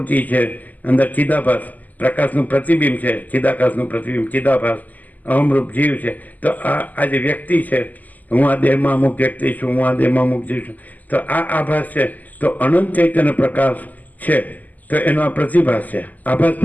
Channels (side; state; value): right; late; 0.081 ms